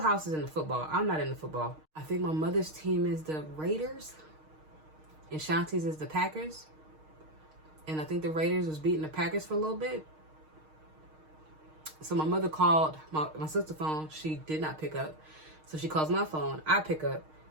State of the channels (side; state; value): left; late; 6.4 ms